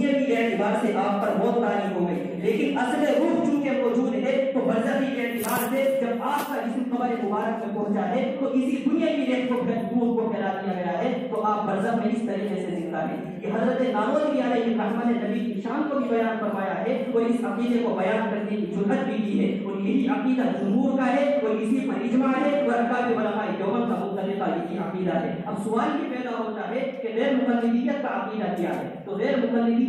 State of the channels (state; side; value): identical; both; correlation 1.00